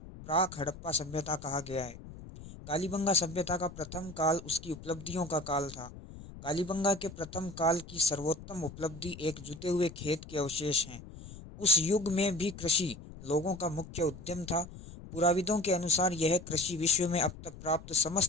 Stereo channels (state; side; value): noise; left; rumble, 15 dB below the sound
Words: हड़प्पा सभ्यता कहा गया है। कालीबंगा सभ्यता का प्रथम काल उसकी उपलब्धियों का काल था। कालीबंगा के प्रथम काल की सर्वोत्तम उपलब्धि एक जुते हुए खेत के अवशेष हैं। उस युग में भी कृषि लोगों का मुख्य उद्यम था। पुराविदों के अनुसार यह कृषि विश्व में अब तक प्राप्त